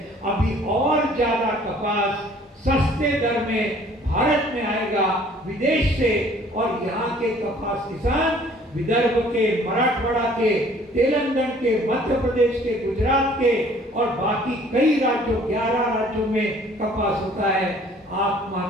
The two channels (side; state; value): both; normal; correlation 0.55